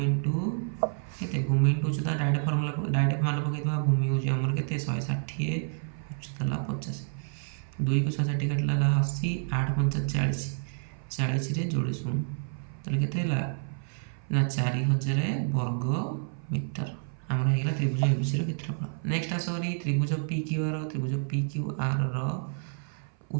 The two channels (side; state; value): left; silent; 55 dB below the other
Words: ଇଣ୍ଟୁ କେତେ? ଭୂମି ଇଣ୍ଟୁ ଉଚ୍ଚତା। ଡାଇରେକ୍ଟ ମାନ ପକାଇଦେବା। ଭୂମି ହେଉଛି ଆମର କେତେ? 160, ଉଚ୍ଚତା ହେଲା 50। 2କୁ 160 କାଟିଲା ହେଲା 80, 8 5 40, 40ରେ ଯୋଡ଼େ ଶୂନ। ତାହେଲେ କେତେ ହେଲା ନା 4000 ବର୍ଗ ମିଟର ଆମର ହେଇଗଲା ତ୍ରିଭୁଜ ABCର କ୍ଷେତ୍ରଫଳ। Next ଆସରି ତ୍ରିଭୁଜ PQR। ତ୍ରିଭୁଜ PQRର